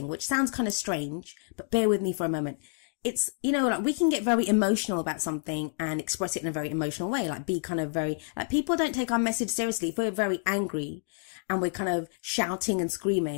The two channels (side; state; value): right; silent; digital silence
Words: which sounds kind of strange, but bear with me for a moment. It's, we can get very emotional about something and express it in a very emotional way, be kind of very, people don't take our message seriously. If we're very angry and we're kind of shouting and